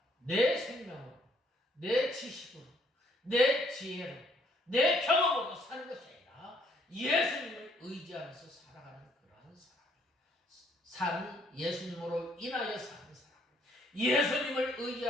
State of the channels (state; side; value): normal; both; correlation 0.66